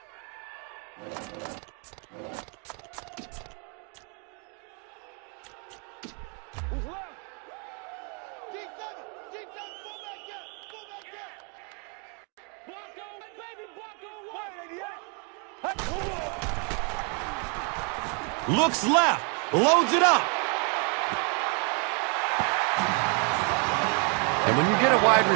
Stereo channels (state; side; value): quieter; left; 37.1 dB